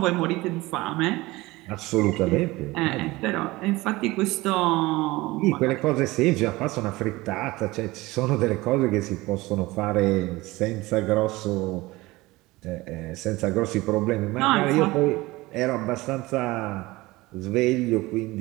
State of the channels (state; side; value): quieter; left; 20.4 dB